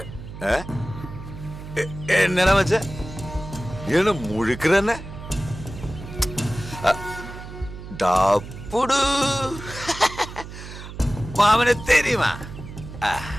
എന്നടാ മച്ച ഇവന് മുഴുക്കന്നെ ഡാപ്പുടു മാമനെ തെരിയുമാ.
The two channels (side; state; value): right; noise; hum, 12 dB below the sound